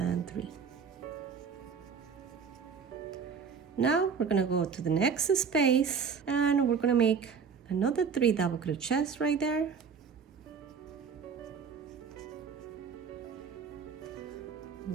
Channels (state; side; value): quieter; left; 6.3 dB